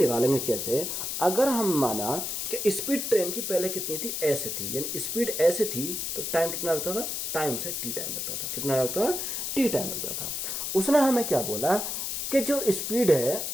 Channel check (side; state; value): left; noise; hiss, 3 dB below the sound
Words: कैसे? अगर हम माना कि स्पीड ट्रेन की पहले कितनी थी? ऐसे थी, यानी स्पीड ऐसे थी तो टाइम कितना लगता था? टाइम से टी टाइम लगता था। कितना लगता था? टी टाइम लगता था। उसने हमें क्या बोला कि जो स्पीड है